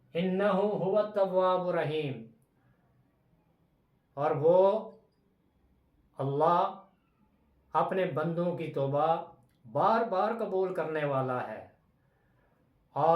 انہ هو التواب الرحیم، اور وہ اللہ اپنے بندوں کی توبہ بار بار قبول کرنے والا ہے،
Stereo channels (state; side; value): identical; both; correlation 1.00